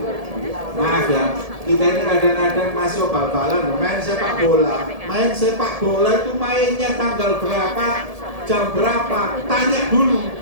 Maaf ya, kita ini kadang-kadang masih bal-balan, main sepak bola itu mainnya tanggal berapa, jam berapa, tanya dulu.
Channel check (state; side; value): late; left; 1.7 ms